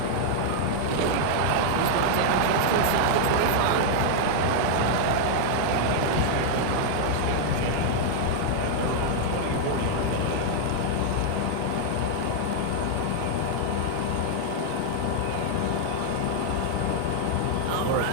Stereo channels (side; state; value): both; different; correlation 0.00